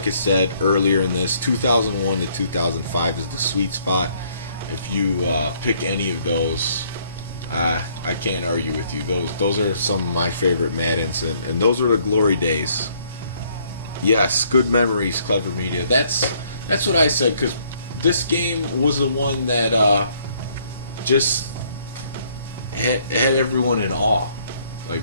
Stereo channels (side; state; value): both; inverted; correlation -0.65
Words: I said earlier in this, 2001 to 2005 is the sweet spot. If you pick any of those, I can't argue with you. Those are some of my favorite Maddens, and those are the glory days. Yes, good memories, Clever Media. That's what I said, because this game was the one that just had everyone in awe. Like,